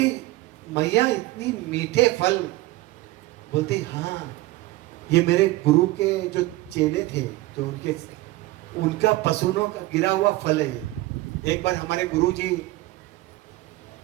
मैया इतनी मीठे फल। बोलती हाँ ये मेरे गुरु के जो चेले थे जो उनका पसीनों का गिरा हुआ फल है। एक बार हमारे गुरु जी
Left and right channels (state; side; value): quieter; left; 18.6 dB